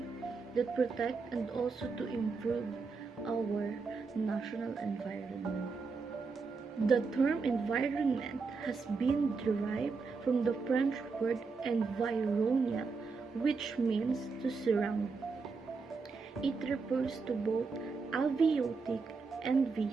that protect and also to improve our national environment. The term environment has been derived from the French word environnement, which means to surround. It refers to both abiotic and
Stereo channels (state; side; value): quieter; left; 4.6 dB